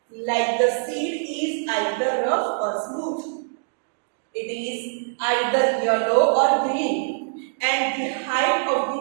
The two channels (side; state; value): left; silent; digital silence